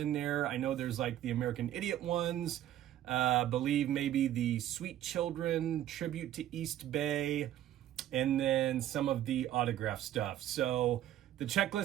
there. I know there's like the American Idiot ones, believe maybe the Sweet Children tribute to East Bay, and then some of the autograph stuff. So the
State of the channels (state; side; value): quieter; left; 12.4 dB